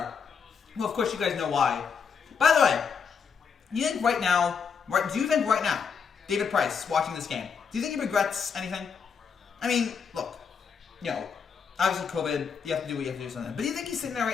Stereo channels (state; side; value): quieter; right; 6.3 dB